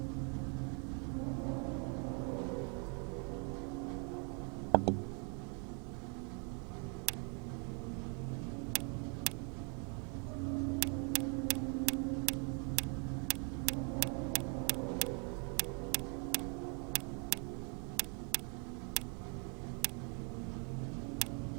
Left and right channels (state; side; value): quieter; left; 38.3 dB